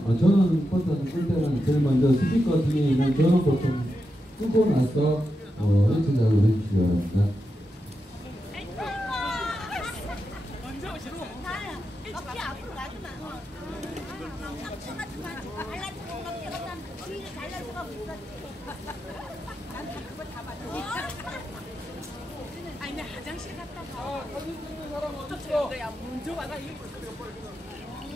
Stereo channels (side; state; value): both; normal; correlation 0.88